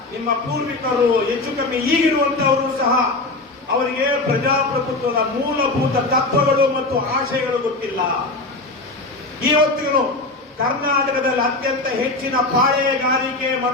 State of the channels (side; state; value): right; quieter; 3.1 dB